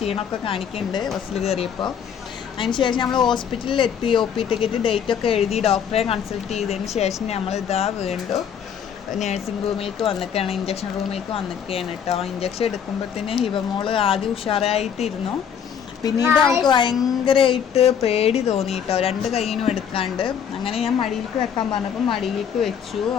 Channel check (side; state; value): right; quieter; 8.0 dB